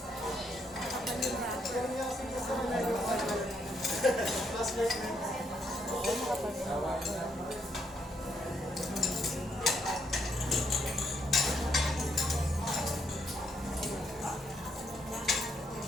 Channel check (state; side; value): normal; both; correlation 0.75